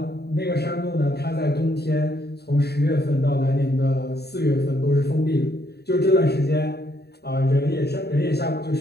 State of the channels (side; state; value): right; late; 0.47 ms